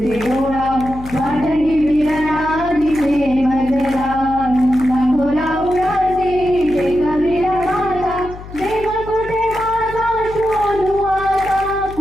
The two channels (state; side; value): noise; left; hum, 14 dB below the sound